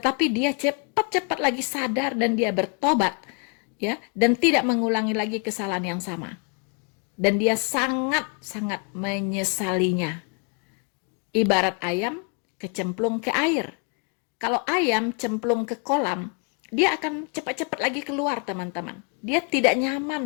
dia cepat-cepat lagi sadar dan dia bertobat, ya, dan tidak mengulangi lagi kesalahan yang sama. Dan dia sangat-sangat menyesalinya. Ibarat ayam kecemplung ke air. Kalau ayam cemplung ke kolam, dia akan cepat-cepat lagi keluar, teman-teman. Dia tidak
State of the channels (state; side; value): quieter; right; 35.8 dB